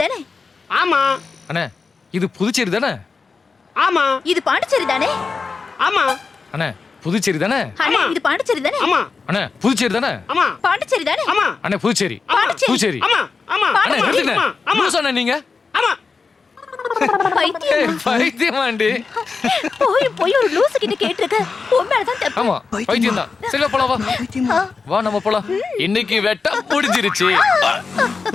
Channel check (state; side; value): quieter; right; 4.7 dB